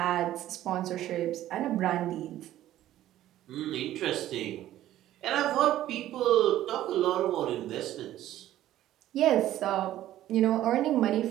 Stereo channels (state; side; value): quieter; left; 13.4 dB